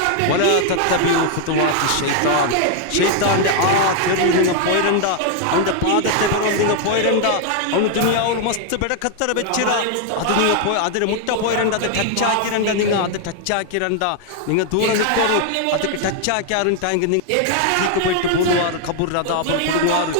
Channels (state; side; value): different; both; correlation 0.00